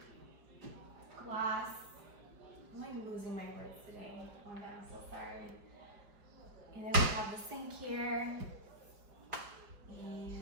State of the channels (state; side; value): late; left; 4.9 ms